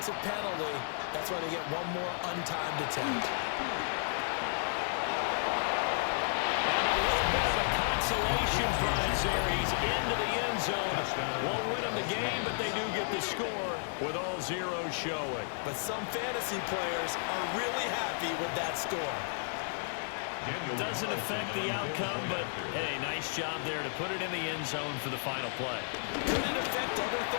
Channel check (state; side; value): silent; right; 56 dB below the other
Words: penalty, that's why they get one more untimed attempt. And a little bit of a consolation prize there. He's into the end zone. Won't win them the game, but they do get the score with all zeros showing. But some fantasy players are really happy with that score. Doesn't affect the outcome, but hey, nice job there to put it in the end zone for the final play. Could it affect other